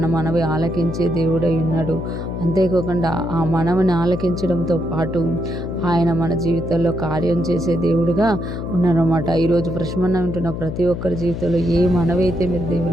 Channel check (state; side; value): noise; left; hum, 6 dB below the sound